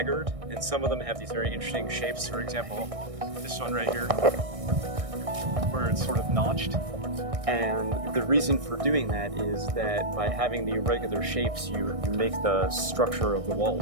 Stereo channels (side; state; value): left; late; 1.6 ms